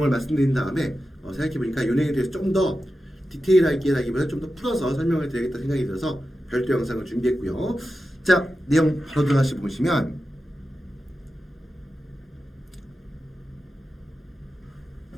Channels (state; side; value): normal; both; correlation 0.91